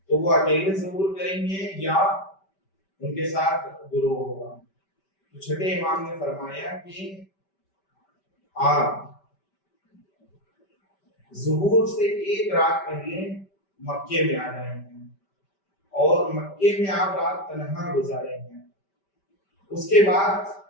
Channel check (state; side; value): late; right; 5.1 ms